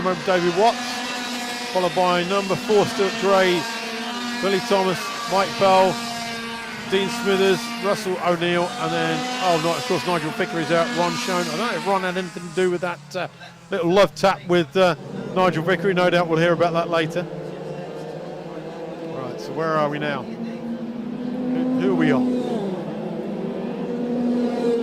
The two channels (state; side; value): identical; both; correlation 1.00